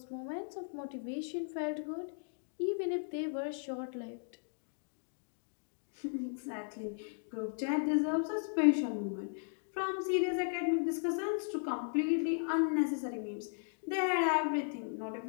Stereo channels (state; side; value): silent; right; digital silence